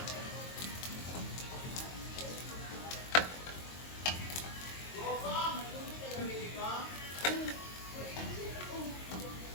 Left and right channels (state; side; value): late; right; 22 ms